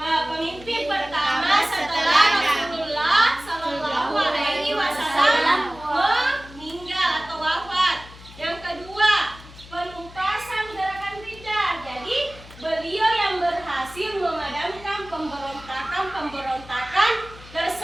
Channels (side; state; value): left; noise; hum, 19 dB below the sound